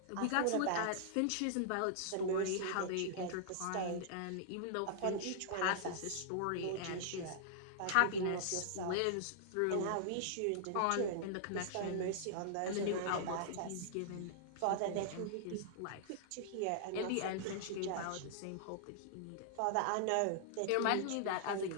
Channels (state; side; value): different; both; correlation -0.01